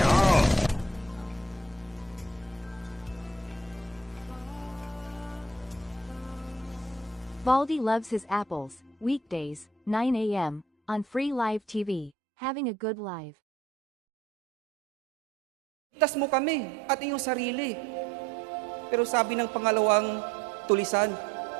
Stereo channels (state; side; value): drops out; left; at 12.1 s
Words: Baldi loves his apples, weekdays, 9 a.m. on free live TV. Having a good live. Tas mo kami at iyong sarili. Pero sabi ng pangalawang tulisan,